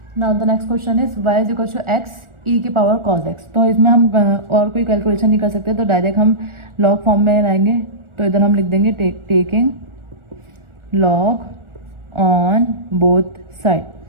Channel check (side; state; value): left; late; 1.4 ms